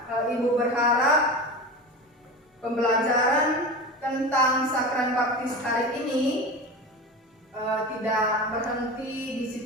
Ibu berharap pembelajaran tentang sakramen baptis hari ini tidak berhenti di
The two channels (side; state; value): both; normal; correlation 0.28